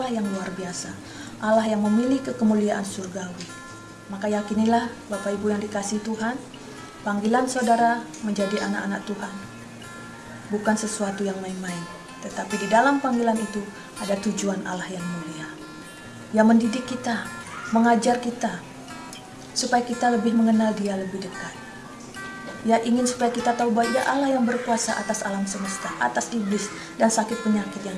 yang luar biasa, Allah yang memiliki kemuliaan surgawi. Maka yakinilah Bapak Ibu yang dikasihi Tuhan, panggilan saudara menjadi anak-anak Tuhan bukan sesuatu yang main-main, tetapi di dalam panggilan itu ada tujuan Allah yang mulia, yang mendidik kita, mengajar kita, supaya kita lebih mengenal Dia lebih dekat. Ya, ingin supaya kita tahu bahwa Dia Allah yang berkuasa atas alam semesta, atas iblis dan sakit penyakit yang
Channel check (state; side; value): identical; both; correlation 1.00